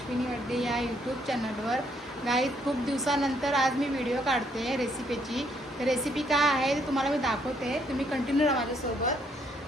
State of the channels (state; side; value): normal; both; correlation 0.70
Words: वड्डे या यूट्यूब चॅनलवर. गाईज खूप दिवसानंतर आज मी व्हिडिओ काढते रेसिपीची. तर रेसिपी काय आहे ते तुम्हाला मी दाखवते, तुम्ही कंटिन्यू राहा माझ्यासोबत.